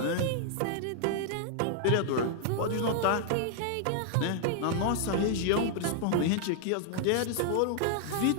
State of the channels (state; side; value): different; both; correlation 0.00